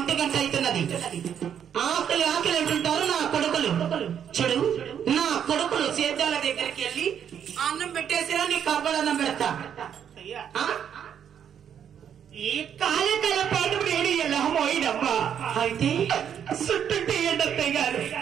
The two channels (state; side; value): quieter; left; 8.7 dB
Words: గంట అవుతున్నది. ఆకలి అంటుంటారు నా కొడుకులు. చూడు, నా కొడుకులు సేద్యాల దగ్గరికి వెళ్ళి అన్నం పెట్టేసినా నీ కబ్బలన్నం పెడతా. ఈ కాలకాల పాటు నేను ఎలా పోయినమ్మా. అయితే సుట్టుంటే ఏంటత్తయ్య గారు?